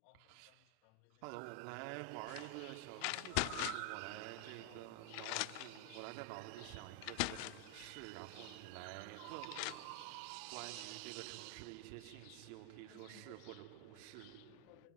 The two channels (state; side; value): different; both; correlation 0.00